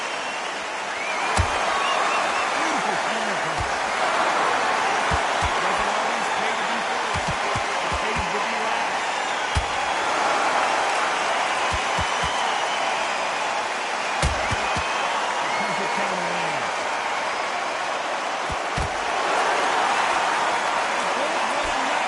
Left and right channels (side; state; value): both; identical; correlation 1.00